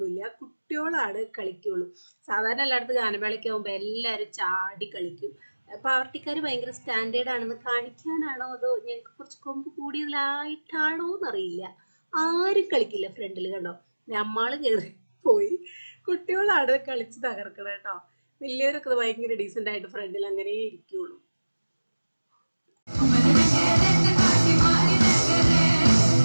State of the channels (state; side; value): inverted; both; correlation -1.00